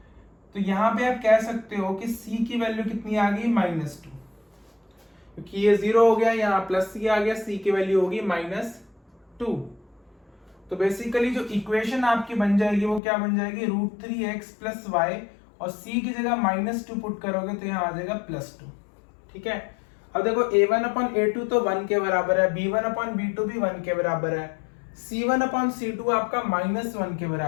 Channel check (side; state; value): right; drops out; at 13.0 s